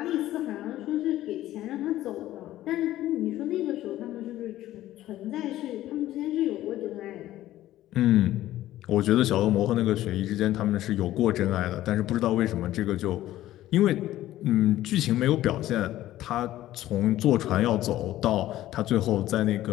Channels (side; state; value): right; quieter; 14.4 dB